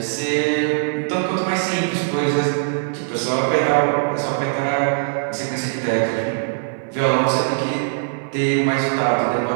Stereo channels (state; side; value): silent; left; digital silence